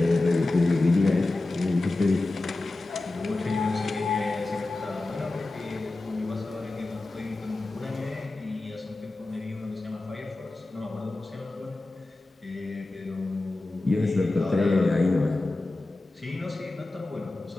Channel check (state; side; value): quieter; right; 3.0 dB